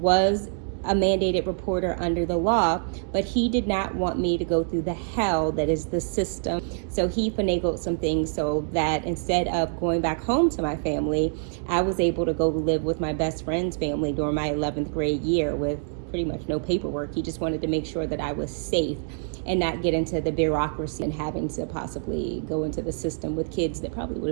a mandated reporter under the law, but he did not want me to go through the hell that is the system. So he finagled some things so that instead of going back home to my family, I was able to go live with my best friend's family during my 11th grade year with pretty much no paperwork. He just wanted to make sure that I was safe and not get into the bureaucracy and having to possibly go into the system with kids that probably would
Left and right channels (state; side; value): silent; left; 61 dB below the other